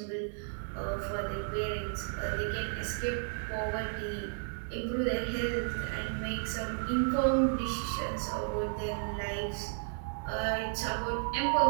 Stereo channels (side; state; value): left; silent; digital silence